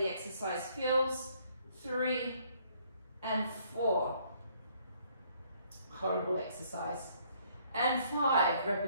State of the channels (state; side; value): inverted; both; correlation -0.65